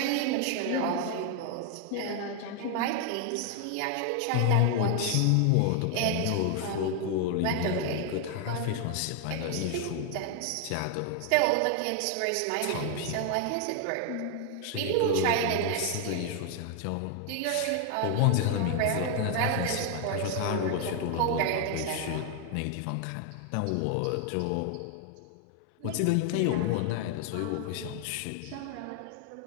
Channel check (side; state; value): both; different; correlation 0.00